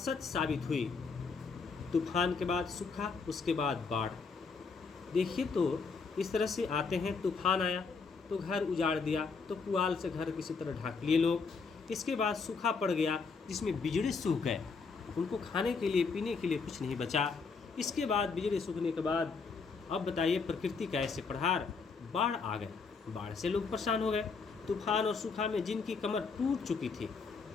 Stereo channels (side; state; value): right; quieter; 4.9 dB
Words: साबित हुई। तूफान के बाद सूखा, उसके बाद बाढ़। देखिए तो इस तरह से आते हैं। तूफान आया तो घर उजाड़ दिया, तो पुआल से घर किसी तरह ढाक लिए लोग। इसके बाद सूखा पड़ गया जिसमें बिजड़ी सूख गए, उनको खाने के लिए पीने के लिए कुछ नहीं बचा। इसके बाद बिजड़ी सूखने के बाद अब बताइए प्रकृति का ऐसे प्रहार, बाढ़ आ गए। बाढ़ से लोग परेशान हो गए। तूफान और सूखा में जिनकी कमर टूट चुकी थी,